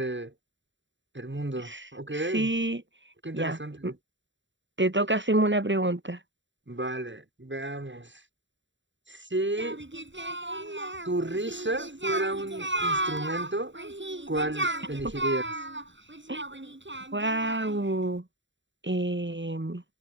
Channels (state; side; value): late; left; 0.54 ms